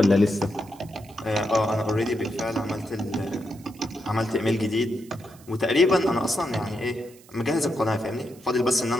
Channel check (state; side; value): noise; right; hiss, 25 dB below the sound